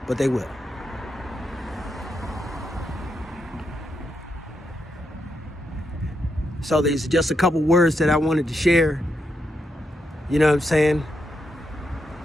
but they will. So there's just a couple words that I wanted to share, you know what I'm saying,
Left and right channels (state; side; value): normal; both; correlation 0.82